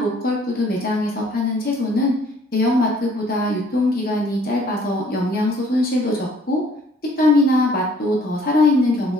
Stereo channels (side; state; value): both; normal; correlation 0.59